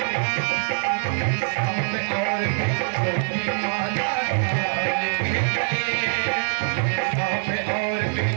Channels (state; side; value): silent; left; 61 dB below the other